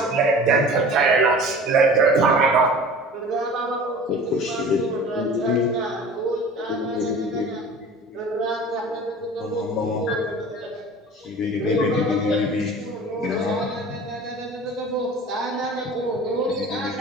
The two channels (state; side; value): normal; both; correlation 0.41